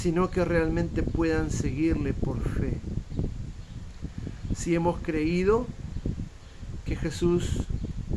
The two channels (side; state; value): both; identical; correlation 1.00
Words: que realmente puedan seguirle por fe. Si hemos creído que Jesús